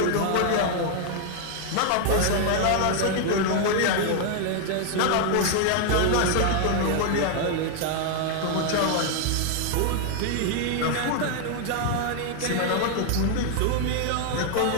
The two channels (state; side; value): different; both; correlation 0.00